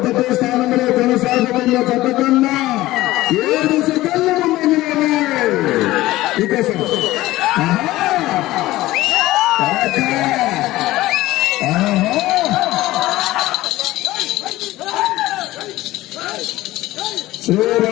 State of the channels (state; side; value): quieter; right; 17.1 dB